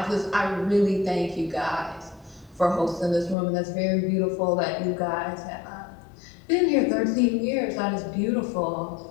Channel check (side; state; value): right; drops out; at 3.4 s